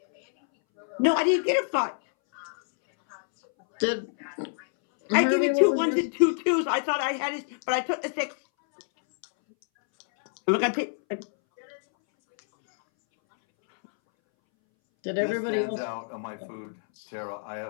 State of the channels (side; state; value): right; silent; 60 dB below the other